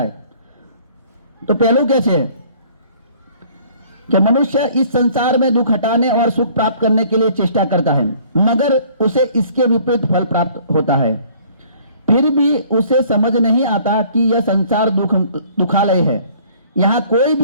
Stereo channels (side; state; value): both; inverted; correlation -0.56